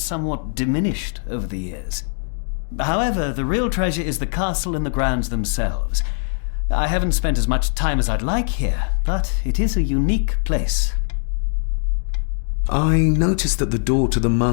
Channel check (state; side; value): silent; right; 65 dB below the other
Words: diminished over the years. However, the real treasure is the castle and the grounds themselves. I haven't spent as much time as I'd like here, but it is a unique place. I noticed that the door to the